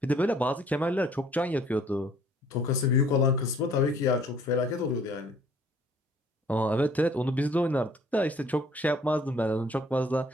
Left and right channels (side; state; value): both; normal; correlation 0.58